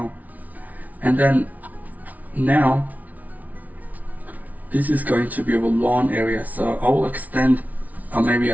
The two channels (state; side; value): late; left; 0.074 ms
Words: And then now this is going to be our lawn area. So I will extend, or maybe